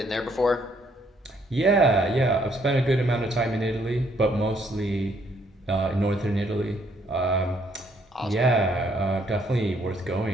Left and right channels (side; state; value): both; normal; correlation 0.69